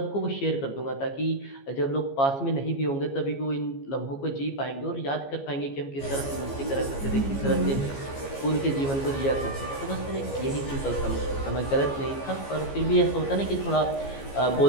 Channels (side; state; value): right; late; 15 ms